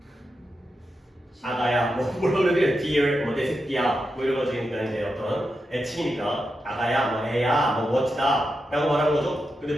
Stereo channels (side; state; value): both; normal; correlation 0.88